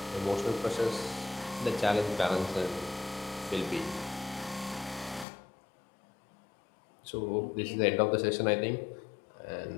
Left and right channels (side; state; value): right; drops out; at 5.2 s